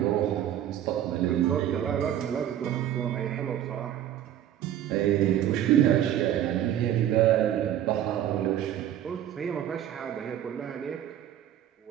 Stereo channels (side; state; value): left; quieter; 11.2 dB